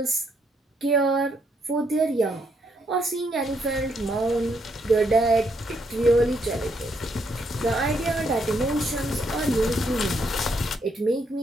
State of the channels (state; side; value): normal; both; correlation 0.74